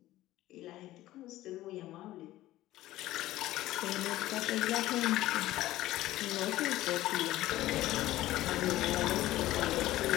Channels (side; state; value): right; quieter; 15.6 dB